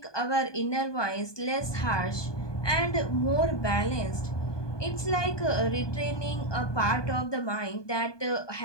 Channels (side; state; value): right; late; 1.2 ms